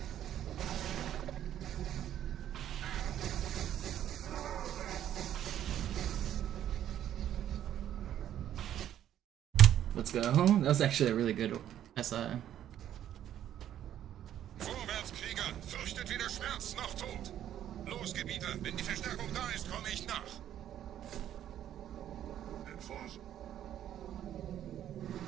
Let's go. That was actually a really good SI. Vorwärts, Krieger! Fürchtet weder Schmerz noch Tod! Los, Gebieter! Wenn die Verstärkung da ist, komme ich nach! Enforce.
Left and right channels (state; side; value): quieter; left; 11.1 dB